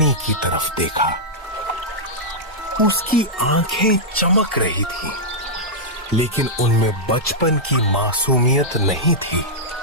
की तरफ देखा। उसकी आंखें चमक रही थीं, लेकिन उनमें बचपन की मासूमियत नहीं थी।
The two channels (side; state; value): both; normal; correlation -0.09